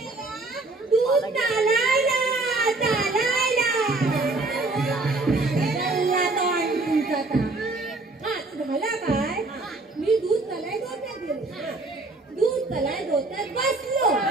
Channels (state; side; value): quieter; left; 3.2 dB